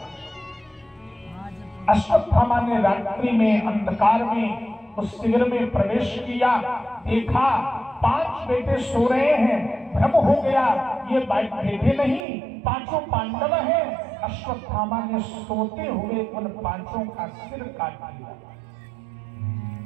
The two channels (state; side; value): drops out; left; at 12.2 s